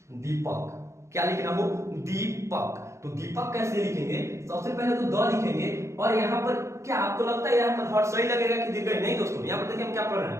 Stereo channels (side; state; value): left; late; 0.14 ms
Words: दीपक, क्या लिखना हो, दीपक, तो दीपक कैसे लिखेंगे, सबसे पहले तो द लिखेंगे, और यहाँ पर क्या आपको लगता है यहाँ पर हर सही लगेगा कि दीर्घ, नहीं दोस्तों, यहाँ पर देखिए हम क्या पढ़ रहे